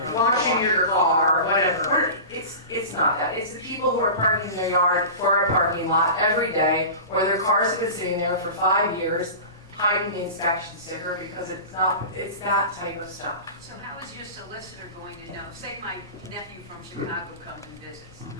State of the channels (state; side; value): inverted; both; correlation -0.32